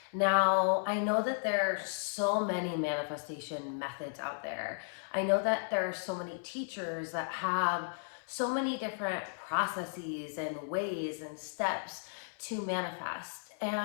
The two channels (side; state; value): right; silent; 55 dB below the other